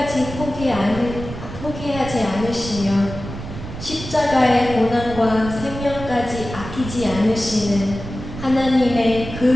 포기하지 않으시며 십자가의 고난과 생명까지 아끼지 않으시는 하나님의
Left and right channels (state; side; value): noise; right; rumble, 10 dB below the sound